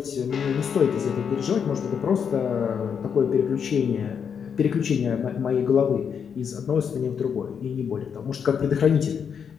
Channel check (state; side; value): quieter; right; 7.1 dB